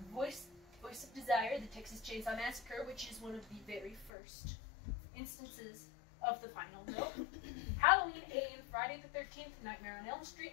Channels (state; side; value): drops out; right; at 4.1 s